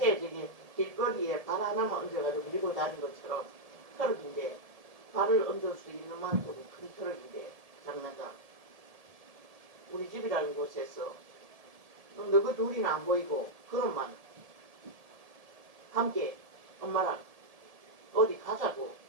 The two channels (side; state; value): left; late; 1.7 ms